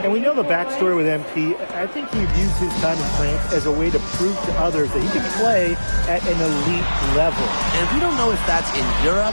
And we know the backstory with MP. I think he views his time in France as a way to prove to others that he can play at an elite level. And we don't know if that's in Europe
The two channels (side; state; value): both; inverted; correlation -1.00